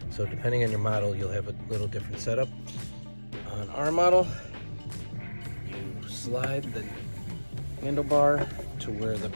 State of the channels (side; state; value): both; inverted; correlation -1.00